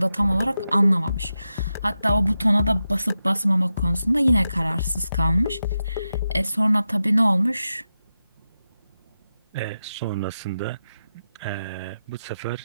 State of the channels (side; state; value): both; inverted; correlation -0.90